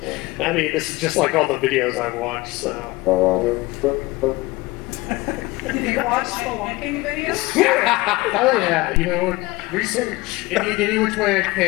I mean, this is just like all the videos I've watched, so. Did you watch spelunking videos? Oh yeah, you know, research any which way I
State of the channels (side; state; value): right; quieter; 21.1 dB